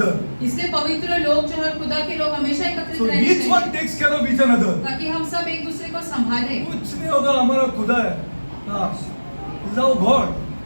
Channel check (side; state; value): both; inverted; correlation -1.00